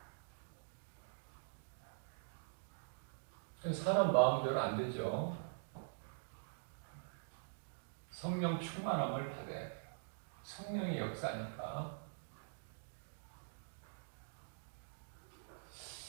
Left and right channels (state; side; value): silent; left; digital silence